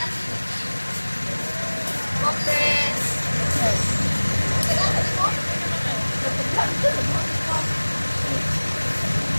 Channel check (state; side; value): inverted; both; correlation -1.00